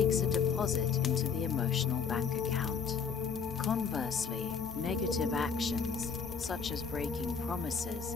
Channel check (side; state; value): right; quieter; 6.2 dB